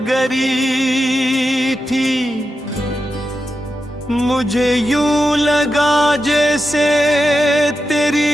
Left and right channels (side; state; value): both; normal; correlation 0.89